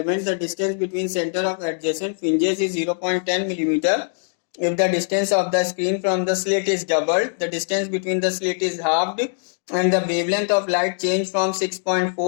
the distance between center of adjacent fringes is 0.10 millimeter. If the distance of the screen from the slit is doubled, the distance between the slit is halved, and the wavelength of light changed from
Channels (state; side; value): silent; right; digital silence